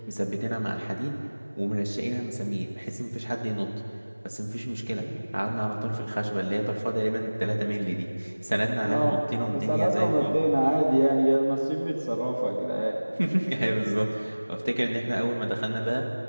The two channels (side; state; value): both; inverted; correlation -1.00